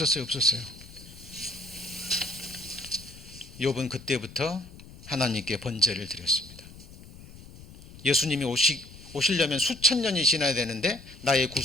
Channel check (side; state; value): left; noise; rumble, 18 dB below the sound